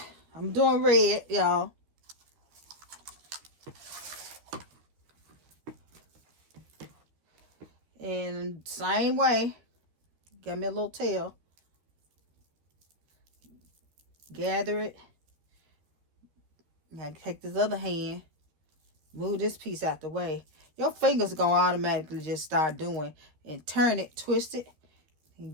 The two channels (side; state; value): left; late; 13 ms